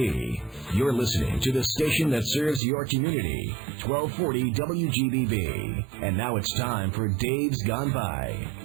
You're listening to the station that serves your community, 1240 WGBB. And now it's time for Dave's Gone By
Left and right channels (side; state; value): left; drops out; at 2.6 s